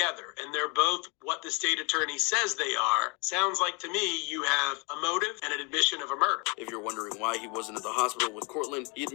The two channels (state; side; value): quieter; right; 31.0 dB